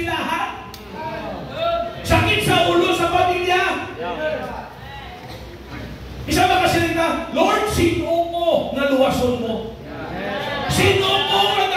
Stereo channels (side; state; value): both; identical; correlation 1.00